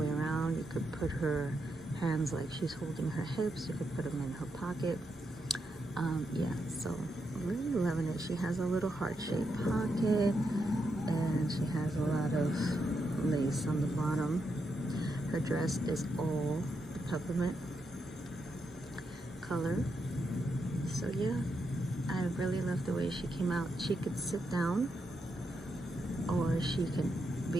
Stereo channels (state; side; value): normal; both; correlation 0.83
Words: around. You could put her hands like she's holding her hips. You could put them in her pocket. Yeah, so really loving it. She has a little heart-shaped pocket and she has a lot of lace on the bottom. Her dress is all peppermint color. So yeah, I really love the way she came out. She could sit down or she can